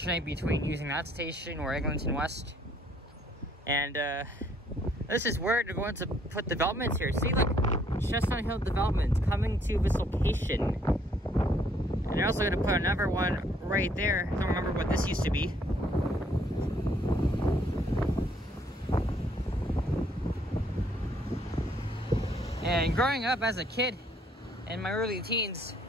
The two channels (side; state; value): both; normal; correlation 0.66